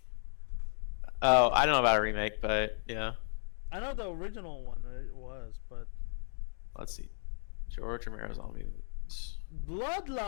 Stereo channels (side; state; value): right; silent; digital silence